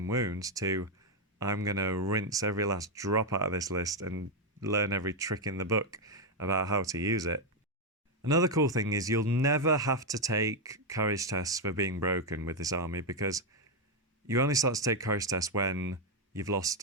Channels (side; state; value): both; normal; correlation 0.04